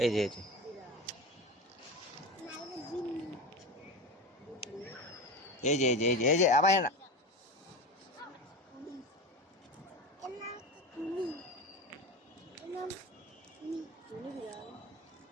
এই যে এই যে এই যে এই যে এই যে এই যে আবার না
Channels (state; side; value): normal; both; correlation 0.25